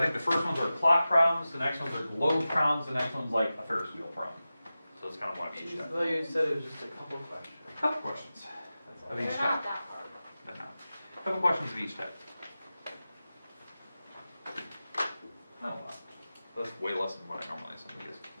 think the first ones are clock problems, the next ones are globe problems, the next one's like a Ferris wheel problem. So it's kind of one of each type. Well, you said it was just a couple of questions. A couple questions of They're each not type. that hard. But not. A couple questions of each type. Oh, wow. That's way less than what I normally send you guys.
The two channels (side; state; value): both; inverted; correlation -0.95